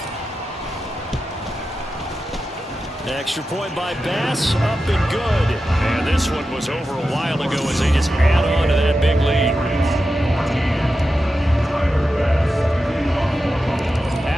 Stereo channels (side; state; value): both; normal; correlation 0.91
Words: Extra point by Bass, up and good. And this one was over a while ago as they just add on to that big lead.